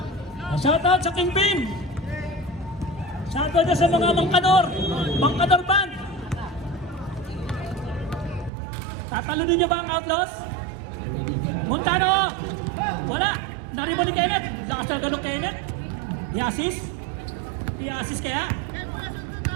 Shoutout sa Kingpin. Shoutout na sa mga Mangkador band. Tatalunin niyo ba ang Outlaws? Montano! Wala! Naribo ni Kenneth. Lakas talaga ng Kenneth. I-assist? I-assist kaya?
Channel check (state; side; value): drops out; left; at 8.5 s